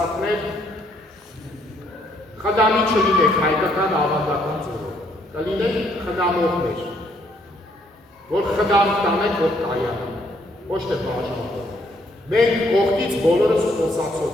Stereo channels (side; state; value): both; normal; correlation 0.69